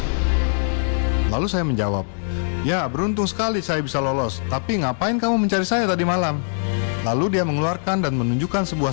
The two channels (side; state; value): right; silent; digital silence